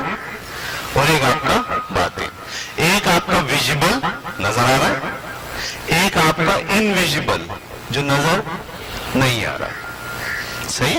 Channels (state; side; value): identical; both; correlation 1.00